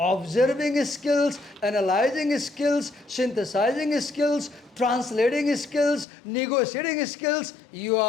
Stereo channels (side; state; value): right; drops out; at 6.1 s